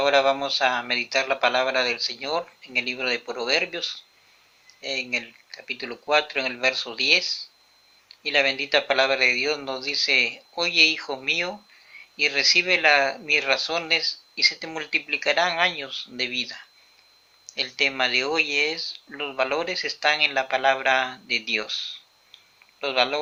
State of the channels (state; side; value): identical; both; correlation 1.00